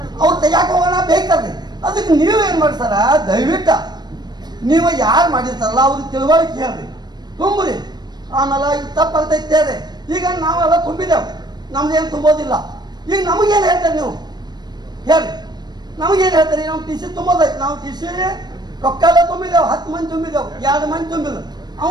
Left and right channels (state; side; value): late; left; 0.20 ms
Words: ಅವ್ರು ತೆಗಿಯಾಕ ಹೋಗೋಣ ಬೇಕಲ್ರಿ. ಅದಕ್ಕೆ ನೀವು ಏನು ಮಾಡ್ತಾರ, ದಯವಿಟ್ಟು ನೀವು ಯಾರು ಮಾಡಿರ್ತಾರಲ್ಲ ಅವ್ರಿಗೆ ತಿಳುವಳಿಕೆ ಹೇಳ್ರಿ, ತುಂಬ್ರಿ. ಆಮೇಲೆ ಈಗ ತಪ್ಪಾಗ್ತೈತೆ ಹೇಳ್ರಿ. ಈಗ ನಾವೆಲ್ಲ ತುಂಬಿದ್ದೇವೆ, ನಮ್ದೇನು ತುಂಬೋದಿಲ್ಲ. ಈಗ ನಮಗೇನು ಹೇಳ್ತಾರೆ ನೀವು ಹೇಳ್ರಿ, ನಮಗೇನು ಹೇಳ್ತಾರೆ? ನಾವು TC ತುಂಬೋದೈತೆ, ನಾವು TC ರೊಕ್ಕೆಲ್ಲ ತುಂಬಿದೆವು, 10 ಮಂದಿ ತುಂಬಿದೆವು, 2 ಮಂದಿ ತುಂಬಿಲ್ಲ,